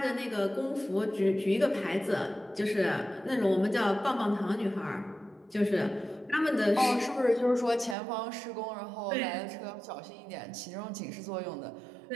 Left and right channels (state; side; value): drops out; left; at 8.0 s